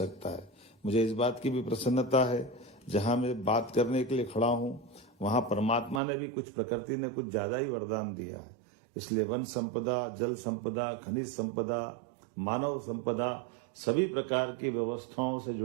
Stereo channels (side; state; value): left; drops out; at 6.0 s